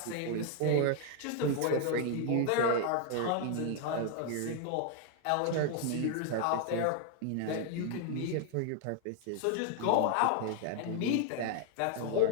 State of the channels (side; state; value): both; different; correlation 0.00